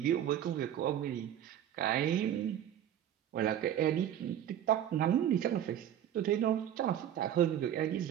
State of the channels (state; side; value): quieter; left; 10.5 dB